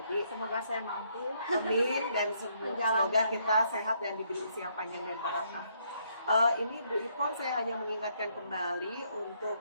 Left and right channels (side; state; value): both; inverted; correlation -0.71